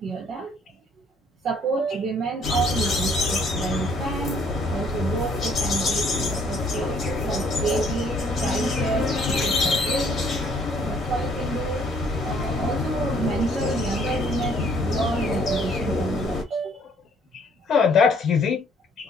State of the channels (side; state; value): both; normal; correlation 0.62